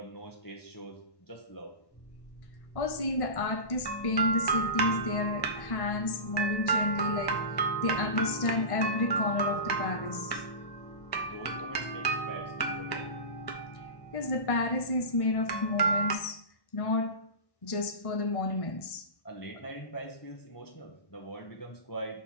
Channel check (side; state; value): right; late; 1.1 ms